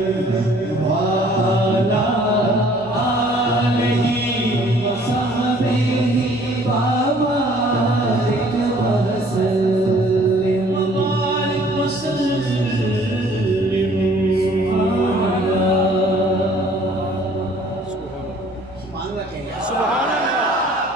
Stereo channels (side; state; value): both; normal; correlation 0.56